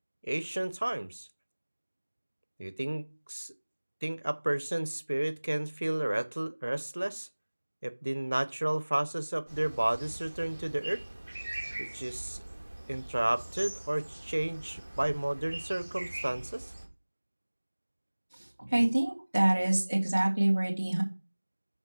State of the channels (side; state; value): both; inverted; correlation -1.00